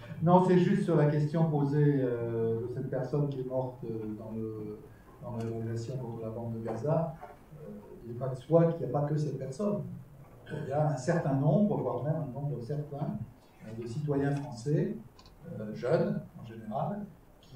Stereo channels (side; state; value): both; identical; correlation 1.00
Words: Non, c'est juste sur la question posée de cette personne qui est morte dans la révolution contre la bande de Gaza. Il n'est pas de soi qu'il n'y a pas que cette personne. Il y a un certain nombre, voire même un nombre certain, de citoyens français, jeunes en général,